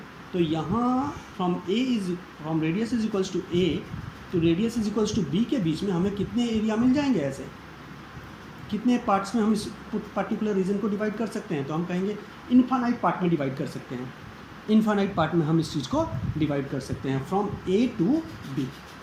तो यहाँ from radius is equals to A to radius is equals to B के बीच में हमें कितने एरिया मिल जाएंगे ऐसे, कितने पार्ट्स में हम इस पर्टिकुलर रीजन को डिवाइड कर सकते हैं, तो हम कहेंगे इन्फानाइट पार्ट में डिवाइड कर सकते हैं। इन्फानाइट पार्ट में हम इस चीज़ को डिवाइड कर सकते हैं from A to B.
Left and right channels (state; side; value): identical; both; correlation 1.00